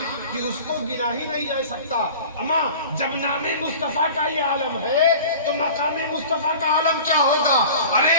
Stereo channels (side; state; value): both; inverted; correlation -0.40